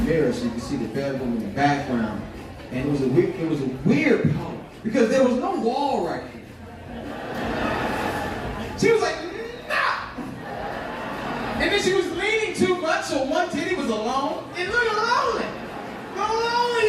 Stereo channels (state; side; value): identical; both; correlation 1.00